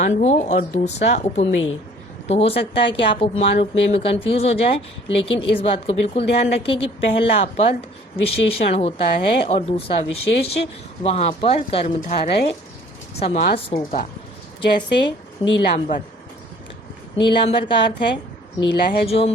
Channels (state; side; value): normal; both; correlation 0.54